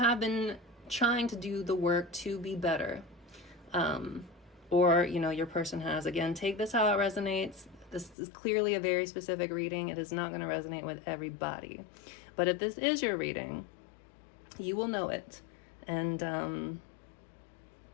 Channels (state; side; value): drops out; right; at 8.2 s